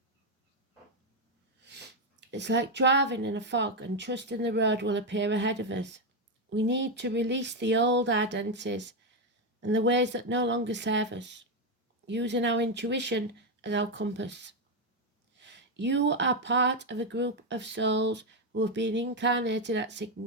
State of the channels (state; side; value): normal; both; correlation 0.06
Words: It's like driving in a fog and trusting the road will appear ahead of us. We need to release the old identities and the ways that no longer serve us, using our intuition as our compass. You are part of a group of souls who have been incarnated at a